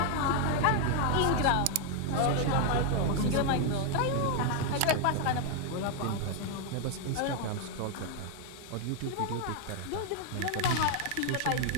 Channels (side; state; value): both; different; correlation 0.00